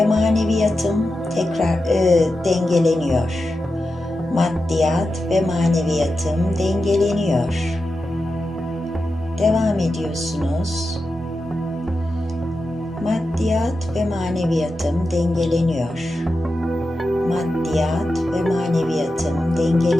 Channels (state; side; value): normal; both; correlation 0.90